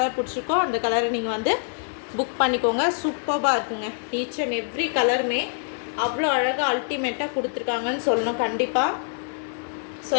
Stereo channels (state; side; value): silent; right; digital silence